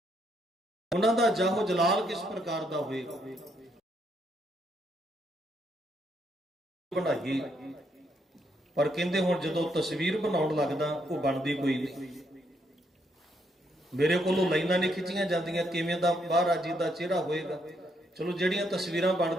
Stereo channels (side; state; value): both; normal; correlation 0.74